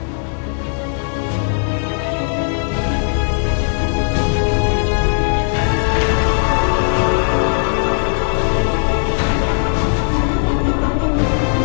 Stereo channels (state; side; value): silent; right; 68 dB below the other